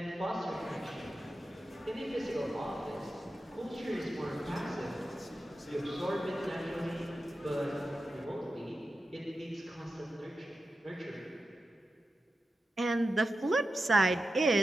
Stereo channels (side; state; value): both; normal; correlation 0.91